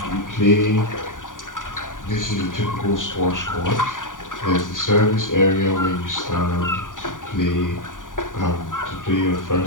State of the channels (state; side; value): late; right; 0.88 ms